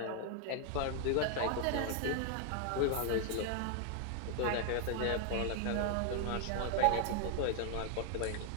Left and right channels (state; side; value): different; both; correlation 0.00